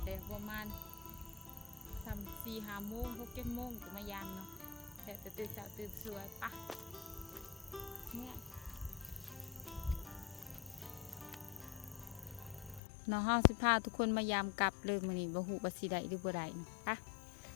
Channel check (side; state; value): right; drops out; at 12.8 s